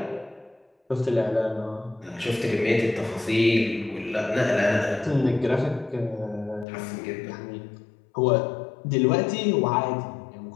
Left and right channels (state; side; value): drops out; right; at 6.7 s